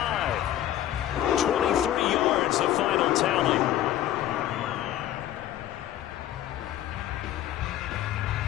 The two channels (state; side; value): quieter; right; 12.5 dB